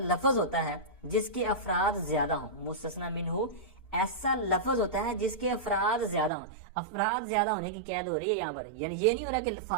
لفظ ہوتا ہے جس کے افراد زیادہ ہوں، مستثنی منہ ایسا لفظ ہوتا ہے جس کے افراد زیادہ ہوں، افراد زیادہ ہونے کی قید ہو رہی ہے یہاں پر، یعنی یہ نہیں ہو رہا کہ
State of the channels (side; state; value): left; drops out; at 6.3 s